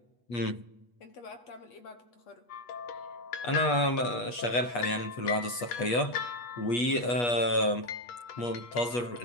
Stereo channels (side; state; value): right; late; 8.3 ms